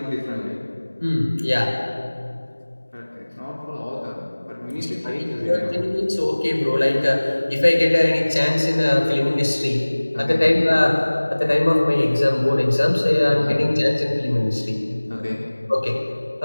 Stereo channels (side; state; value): both; inverted; correlation -1.00